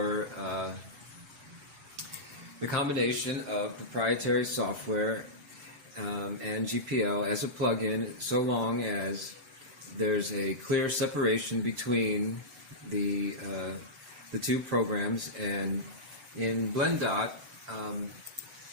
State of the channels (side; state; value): left; late; 6.9 ms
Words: the combination of proprietary software and GPL as a plugin, so long as there's a clear separation between the two programs. And in blendot,